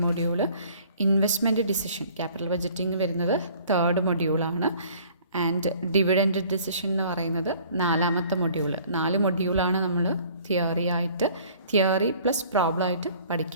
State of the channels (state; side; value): inverted; both; correlation -0.53